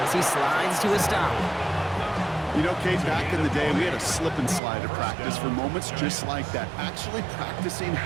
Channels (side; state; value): left; drops out; at 4.6 s